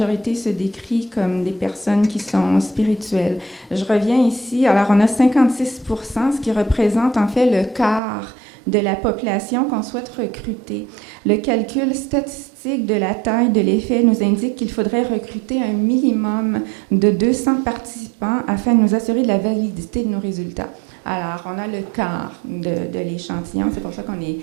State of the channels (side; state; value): left; drops out; at 8.0 s